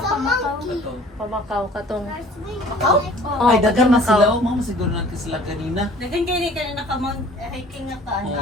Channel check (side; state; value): both; normal; correlation 0.50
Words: a monkey. Pamakaw katong. Makaw? Oh, Ay, dagan na Macau. sila. Oh, mama, siguro natin sila kanina. Dagan kayo rin ka na nakamount, hiking nga ka, Oo.